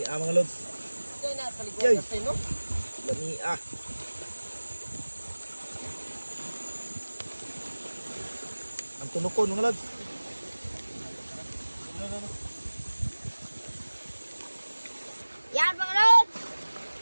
mga lods. Yay. Lamia. Ang tunukon mga lods. Yan, mga Lods.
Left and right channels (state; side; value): inverted; both; correlation -1.00